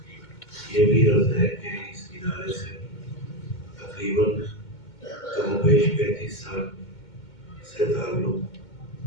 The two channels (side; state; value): right; late; 2.2 ms